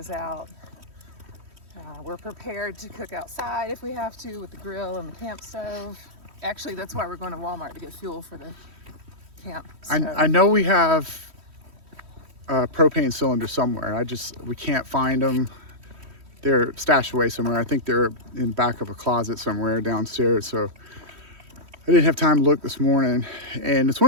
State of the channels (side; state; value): left; late; 3.1 ms